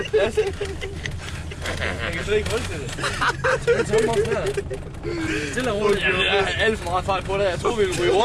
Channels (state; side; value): identical; both; correlation 1.00